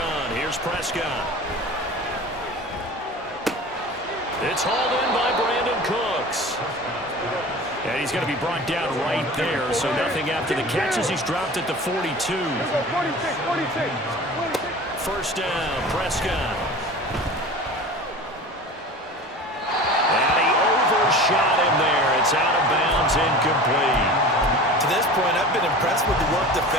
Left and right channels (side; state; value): both; normal; correlation 0.37